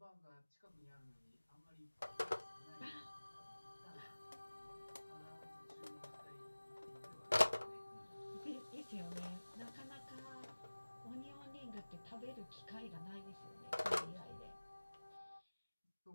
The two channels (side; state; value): both; inverted; correlation -1.00